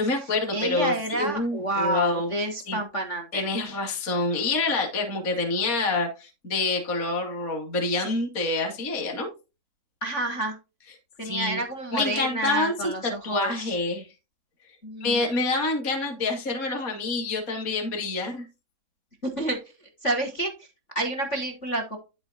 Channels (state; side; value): late; right; 3.6 ms